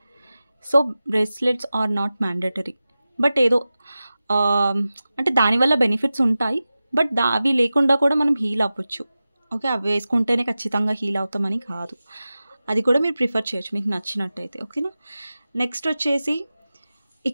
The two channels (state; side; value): inverted; both; correlation -0.95